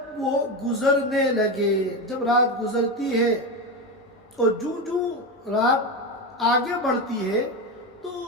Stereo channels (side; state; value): both; normal; correlation 0.17